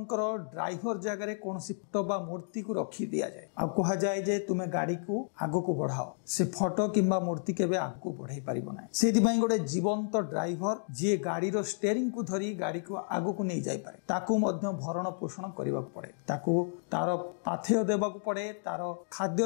ड्राइवर जगह रे कोनसी फोटो बा मूर्ति को रखी दिया जाए, आ कहा जाए जे तुमे गाड़ी को आगो को बढ़ाओ, से फोटो किंबा मूर्ति केबे आगो को बढ़ाई परिबो ना। सेति पई गोटे जीवंत ड्राइवर जे गाड़ी रो स्टीयरिंग को धरी गाड़ी को आगो को नहीं जाई पारे, ताकू मध्य भरण पोषण करबा पड़े, ताकू तार पाथेय देबा को पड़े, तार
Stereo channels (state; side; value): silent; right; digital silence